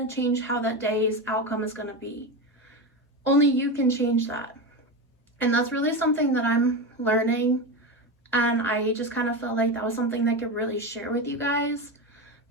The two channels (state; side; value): normal; both; correlation 0.18